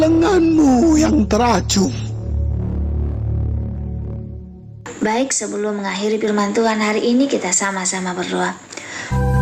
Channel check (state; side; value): identical; both; correlation 1.00